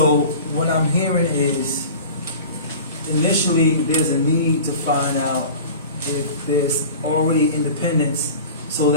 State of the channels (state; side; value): inverted; both; correlation -0.37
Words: what I'm hearing is initially there's a need to find out if there's already independence, so